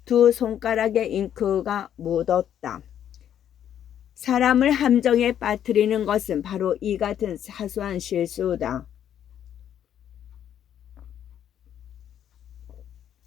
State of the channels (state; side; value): quieter; right; 10.0 dB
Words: 두 손가락에 잉크가 묻었다. 사람을 함정에 빠뜨리는 것은 바로 이 같은 사소한 실수다.